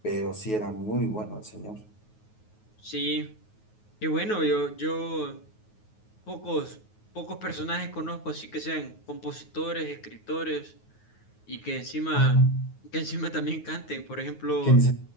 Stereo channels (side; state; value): right; late; 9.4 ms